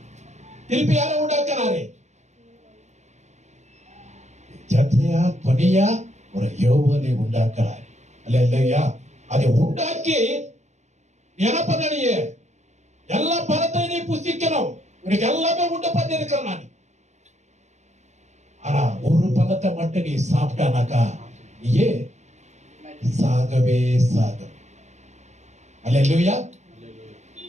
திருப்பி யாரை உண்டாக்குனாரு? ஜத்ரியா துணியா ஒரு யோவானை உண்டாக்குறாரு. அல்லேலூயா. அதை உண்டாக்கி என்ன பண்ண? நீ எல்லா பழத்தையும் நீ புசிக்கணும். உனக்கு எல்லாமே உண்டு பண்ணி இருக்கிறேன் நான். ஆனா ஒரு பழத்தை மட்டும் நீ சாப்பிட்டானாக்கா நீயே சாகவே சாக. அல்லேலூயா.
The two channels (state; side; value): late; left; 0.33 ms